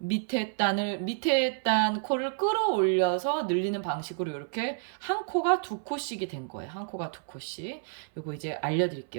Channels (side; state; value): left; silent; 58 dB below the other